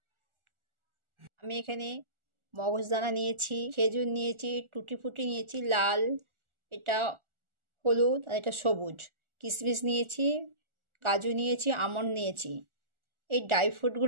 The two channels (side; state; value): left; late; 1.4 ms